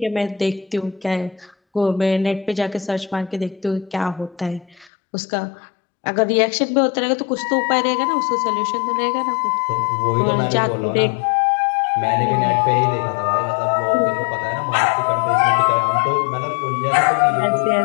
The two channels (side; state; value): right; drops out; at 4.9 s